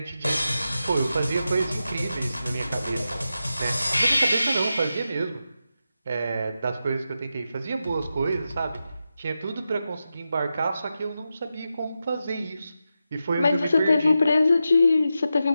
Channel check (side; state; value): both; inverted; correlation -0.90